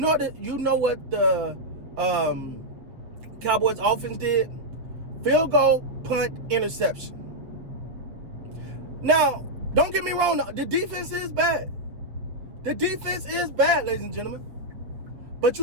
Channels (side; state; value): left; late; 7.6 ms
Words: what the Cowboys offense did? Field goal, punt, interception. Now, don't get me wrong. The defense is bad. The defense is bad, ladies and gentlemen. But